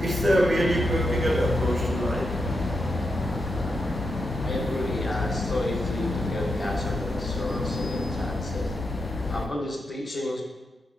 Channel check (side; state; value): both; normal; correlation 0.85